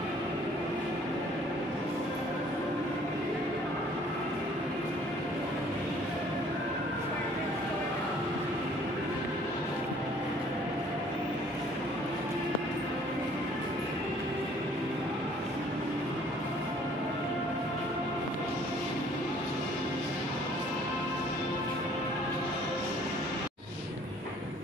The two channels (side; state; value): both; normal; correlation 0.57